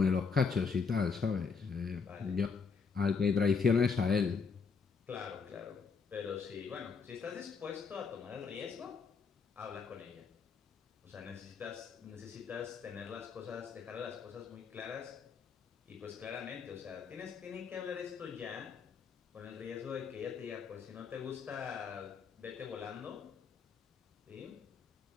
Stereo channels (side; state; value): right; quieter; 5.4 dB